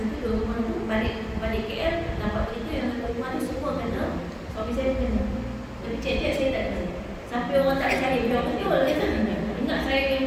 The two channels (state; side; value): identical; both; correlation 1.00